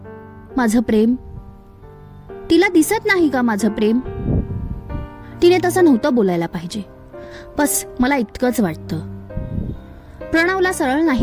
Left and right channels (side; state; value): both; identical; correlation 1.00